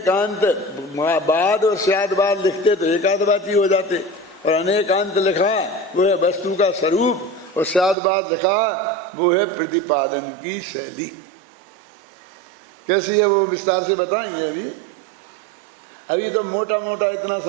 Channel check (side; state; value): left; drops out; at 8.0 s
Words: बाद और स्यादवाद लिखते तो एकाध बात ही हो जाते, और अनेकांत लिखा वो है वस्तु का स्वरूप, और स्यादवाद लिखा वो है प्रतिपादन की शैली। कैसी है वो विस्तार से बताएंगे। अभी तो मोटा मोटा इतना